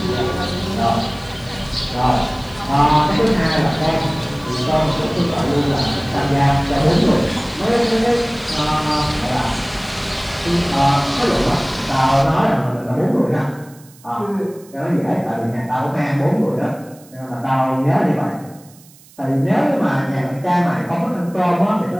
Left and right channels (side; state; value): right; noise; hiss, 25 dB below the sound